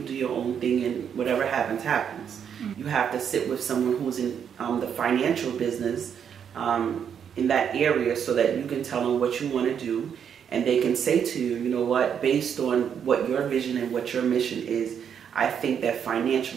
your own thing, and whatever happens, happens. You have to sit with someone who's in the financial business in that area so that you can tell them what you want to do, and they can say to you, you know what, based on what your vision and what your mission is, I think that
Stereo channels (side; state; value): left; quieter; 8.0 dB